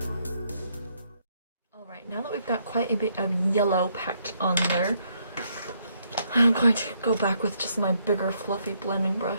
Now that we've got quite a bit of yellow packed on there, I'm going to go back with just my bigger fluffy blending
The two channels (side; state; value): both; inverted; correlation -0.73